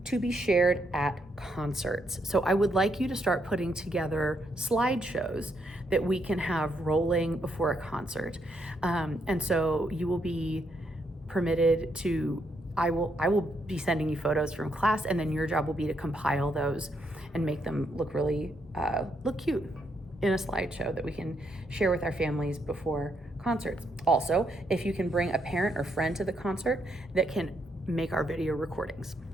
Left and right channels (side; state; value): both; normal; correlation 0.77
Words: to be shared at concerts. So I would like you to start putting together slideshows that we can have rolling before a concert. And so you will be permitted to, I will be sending you photos from class, and then your job will be to compile those and make them look really, look cute in a slideshow that we can share with our families before concerts. Also, if you can bring a parent or friend to the concert that can make our video recordings.